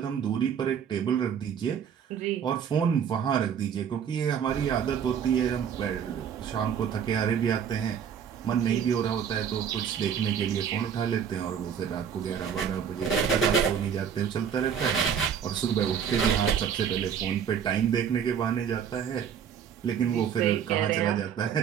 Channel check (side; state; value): left; quieter; 8.0 dB